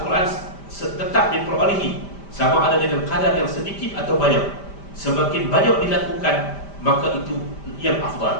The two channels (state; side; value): late; right; 5.1 ms